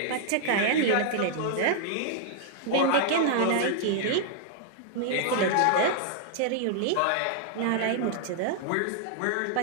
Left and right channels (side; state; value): both; different; correlation -0.01